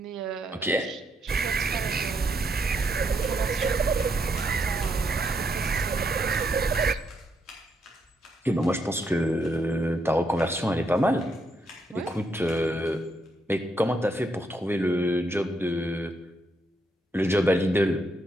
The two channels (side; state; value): both; normal; correlation 0.77